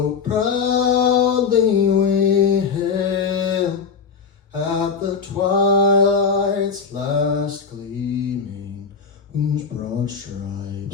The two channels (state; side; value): quieter; right; 5.8 dB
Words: proudly we hailed at the twilight's last gleaming, whose broad